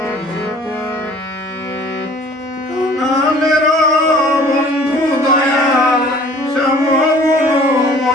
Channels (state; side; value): normal; both; correlation 0.51